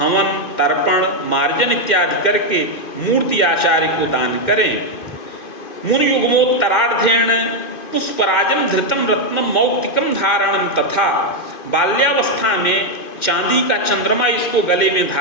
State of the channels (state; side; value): late; right; 2.5 ms